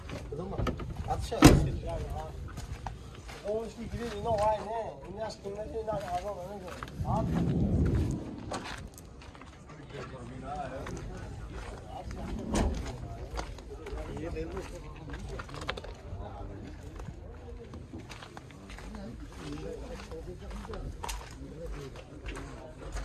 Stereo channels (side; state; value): both; identical; correlation 1.00